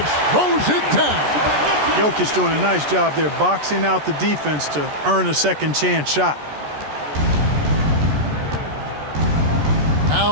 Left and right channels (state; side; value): late; left; 14 ms